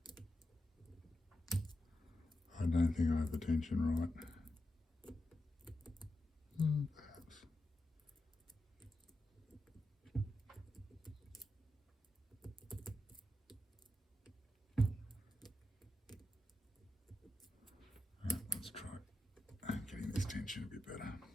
I don't think I have the tension right. Perhaps. Let's try getting this tension a bit better.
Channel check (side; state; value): both; normal; correlation 0.88